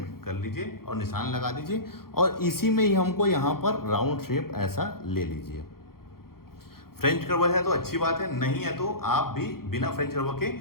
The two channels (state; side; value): late; right; 0.93 ms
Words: कर लीजिए और निशान लगा दीजिए, और इसी में ही हमको यहाँ पर राउंड शेप ऐसा ले लीजिए। फ्रेंच कर्व है तो अच्छी बात है, नहीं है तो आप भी बिना फ्रेंच कर्व के